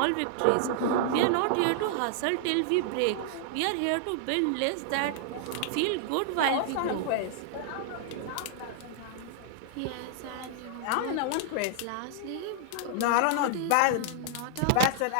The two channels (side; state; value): both; different; correlation -0.01